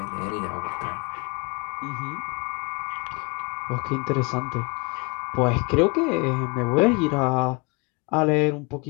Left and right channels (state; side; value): quieter; right; 29.8 dB